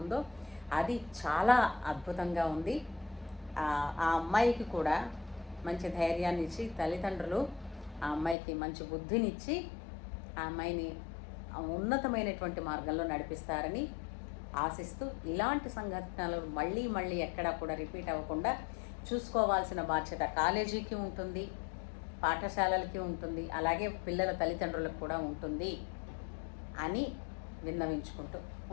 ఉందో అది చాలా అద్భుతంగా ఉంది. ఆ అమ్మాయికి కూడా మంచి ధైర్యాన్ని ఇచ్చి, తల్లిదండ్రులు ఆ అమ్మాయికి మంచి బుద్ధినిచ్చి ఆ అమ్మాయిని ఉన్నతమైనటువంటి మార్గంలో నడిపిస్తారని ఆశిస్తూ, ఇలాంటి సంఘటనలు మళ్ళీ ఎక్కడా కూడా రిపీట్ అవ్వకుండా చూసుకోవాల్సిన బాధ్యత కాలేజీకి ఉంటుంది, పాఠశాలలకి ఉంటుంది, అలాగే పిల్లల తల్లిదండ్రులకు కూడా ఉంటుంది అని విన్నవించుకుంటూ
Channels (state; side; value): drops out; right; at 8.3 s